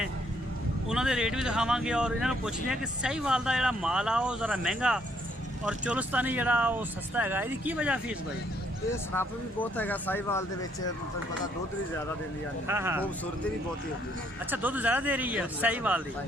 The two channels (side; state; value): both; normal; correlation 0.69